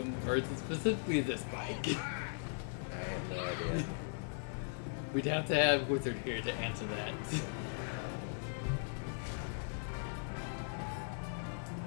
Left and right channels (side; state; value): right; silent; digital silence